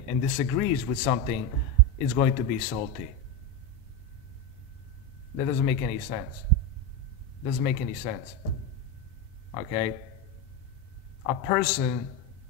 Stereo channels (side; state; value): both; normal; correlation 0.13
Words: and disagrees with something is going to be salty? That doesn't make any sense. Doesn't make any sense. Okay? A person